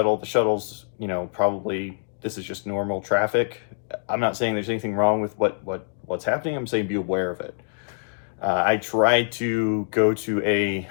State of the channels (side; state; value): right; silent; digital silence